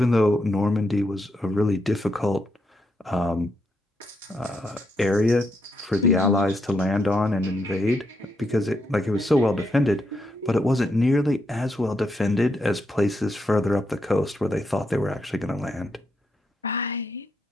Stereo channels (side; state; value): both; normal; correlation 0.81